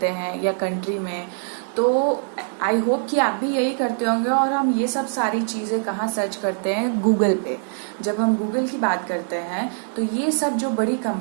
हैं या कंट्री में। तो आई होप कि आप भी यही करते होंगे। और हम ये सब सारी चीज़ें कहाँ सर्च करते हैं? गूगल पे। जब हम गूगल की बात करते हैं तो ये सब जो बड़ी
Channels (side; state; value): left; silent; digital silence